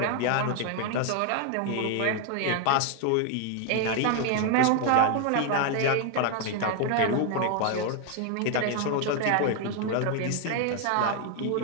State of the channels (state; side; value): different; both; correlation 0.01